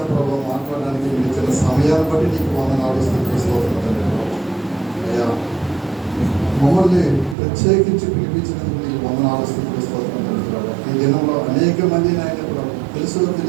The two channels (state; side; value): drops out; left; at 7.4 s